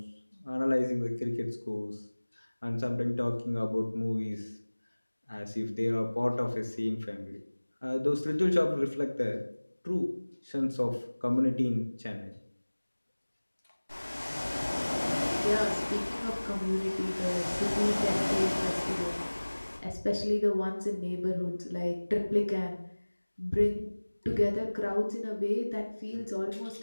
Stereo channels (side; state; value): both; inverted; correlation -1.00